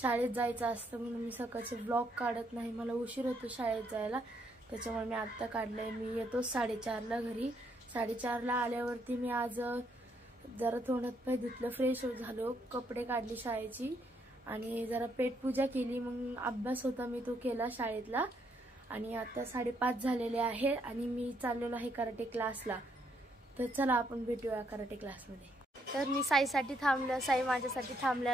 शाळेत जायचं असतं म्हणून मी सकाळचे व्लॉग काढत नाही, मला उशीर होतो शाळेत जायला, त्याच्यामुळे मी आत्ता काढलंय। मी येतो 4:30ला घरी। 4:30ला आल्यावरती मी आज जरा तोंडात पाय धुतलं, फ्रेश झालो, कपडे काढले शाळेची आणि जरा पेटपूजा केली। मग अभ्यास होता मी तो केला शाळेतला आणि आता 5:30 झालेले आहे आणि मी चाललेलो आहे कराटे क्लासला। तर चला आपण भेटूया कराटे क्लासमध्ये। तर मी साईसाठी थांबलं, साई माझ्यासाठी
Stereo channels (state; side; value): normal; both; correlation 0.73